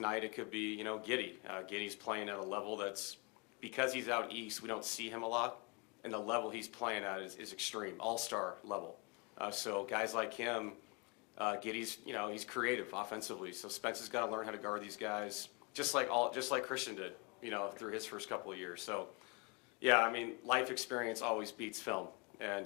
it could be, you know, Giddey. Giddey's playing at a level that's, because he's out east, we don't see him a lot. And the level he's playing at is extreme, all-star level. So guys like him, Giddey's, you know, he's creative offensively. So Spence has got to learn how to guard these guys, just like Christian did, you know, through his first couple of years. So, yeah, I mean, life experience always beats film, and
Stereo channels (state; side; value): quieter; right; 31.2 dB